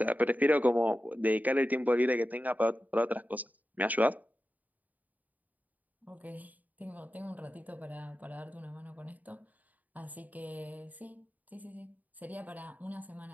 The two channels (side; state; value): left; late; 0.078 ms